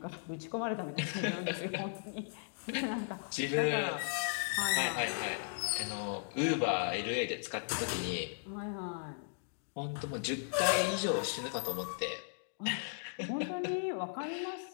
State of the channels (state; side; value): silent; right; digital silence